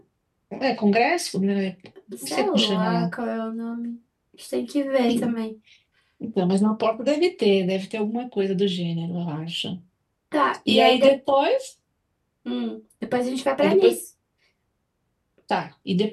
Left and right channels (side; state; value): both; identical; correlation 1.00